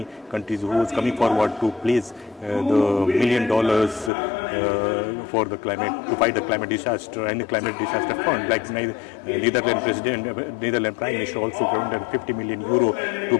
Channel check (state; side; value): drops out; right; at 4.1 s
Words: countries who was coming forward to place the $1 million for the climate, to fight the climate disaster and the climate disaster fund, like Netherlands Prime Minister also granted 50 million euro to